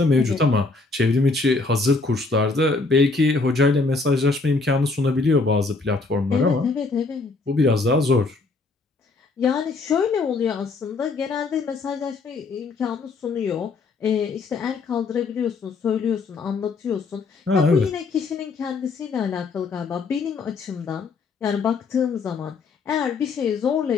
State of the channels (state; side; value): quieter; right; 4.0 dB